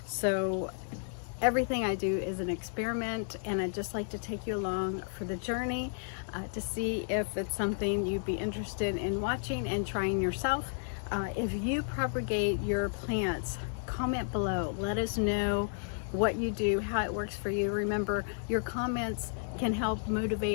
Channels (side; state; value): right; silent; digital silence